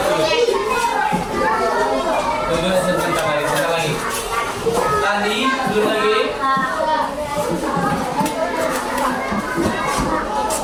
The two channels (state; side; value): identical; both; correlation 1.00